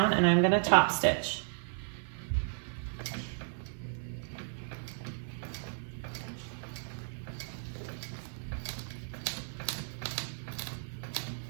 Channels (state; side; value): silent; left; 55 dB below the other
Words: and I'm gonna top stitch.